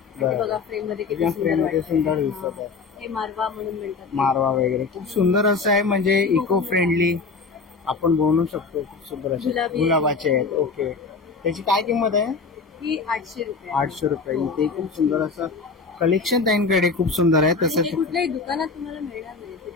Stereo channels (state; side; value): quieter; right; 4.5 dB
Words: ते बघा फ्रेम मध्ये किती फ्रेम मध्ये सुंदर सुंदर दिसत आहे. हे मारवा म्हणून म्हणतात. मारवा वगैरे खूप सुंदर असं आहे, म्हणजे इको फ्रेंडली आपण बनवू शकतो. खूप सुंदर असे गुलाबी. गुलाबाचे आहेत. ओके. त्याची काय किंमत आहे? ही 800 रुपये. 800 रुपये. इथे खूप सुंदर असं कलेक्शन त्यांच्याकडे खूप सुंदर आहे. आणि हे तसंच कुठल्याही दुकानात तुम्हाला मिळणार नाही.